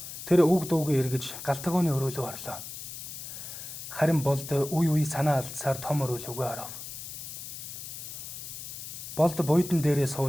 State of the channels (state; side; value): noise; left; hiss, 9 dB below the sound